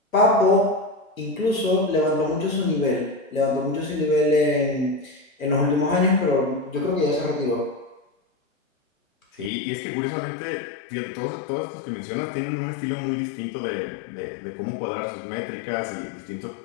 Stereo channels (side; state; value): right; drops out; at 9.5 s